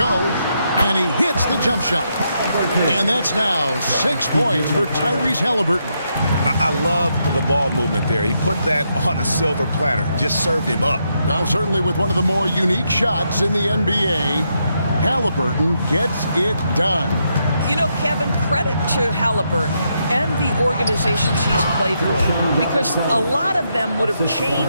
And he hits the jump shot. And that's now 6 points for Tyrese Halliburton. I love the ball movement there. He put that on a silver platter. Just served him up. Well, certainly with one of the more unique shots in the NBA, Halliburton gets it done. You know, Kevin, credit to Halliburton and the organizations he's played for, because a lot of them would have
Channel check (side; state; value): both; inverted; correlation -0.80